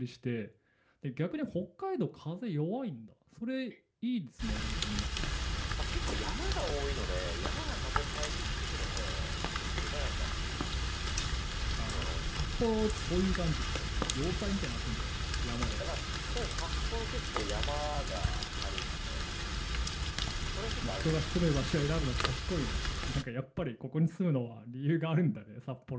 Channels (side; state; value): both; identical; correlation 1.00